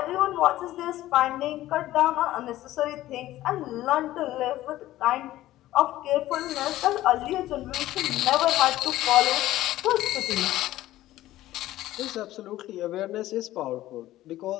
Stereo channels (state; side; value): quieter; right; 15.1 dB